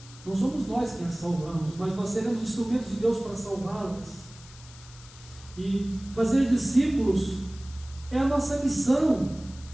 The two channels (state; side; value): noise; left; hiss, 20 dB below the sound